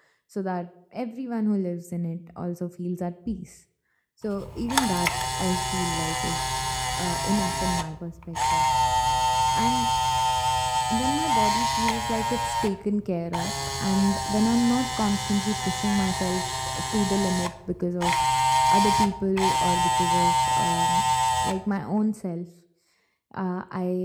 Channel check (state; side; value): identical; both; correlation 1.00